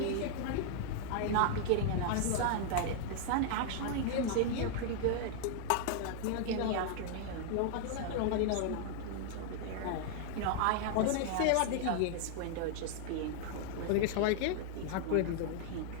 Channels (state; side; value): different; both; correlation 0.00